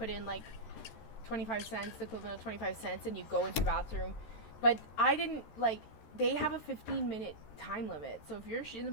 in, like, 25 cents, the equivalent of 25 cents, and you go into the bathroom. But I didn't, like, they have a 15-minute time limit. So if you're in the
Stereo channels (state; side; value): late; right; 13 ms